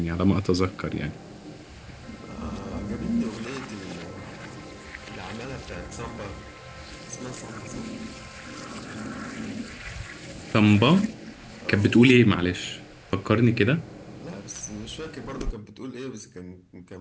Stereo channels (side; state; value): both; identical; correlation 1.00